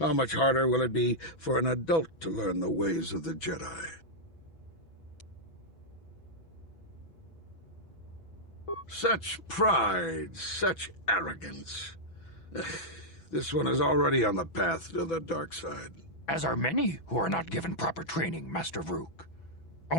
much harder will it be for an adult to learn the ways of the Jedi? Such pride, such arrogance. This one is already on the path to the dark side. As are many who are not given proper training, Master Vrook.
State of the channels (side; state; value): right; late; 6.1 ms